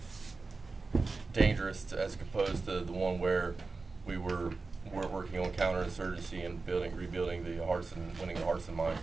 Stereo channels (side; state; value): left; quieter; 3.9 dB